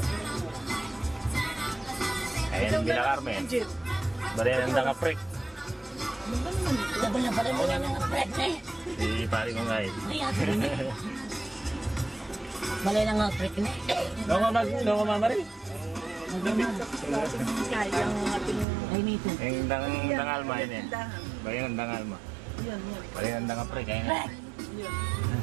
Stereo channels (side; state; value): left; drops out; at 18.7 s